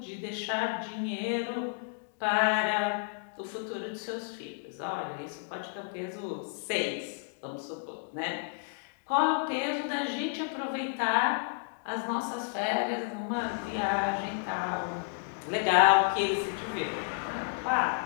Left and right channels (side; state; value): right; silent; 57 dB below the other